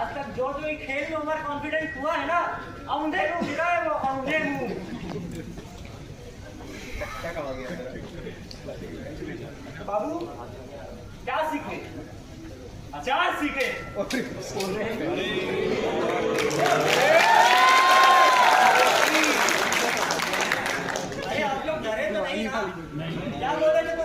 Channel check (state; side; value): identical; both; correlation 1.00